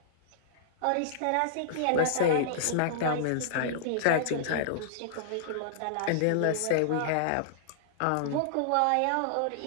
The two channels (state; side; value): different; both; correlation -0.02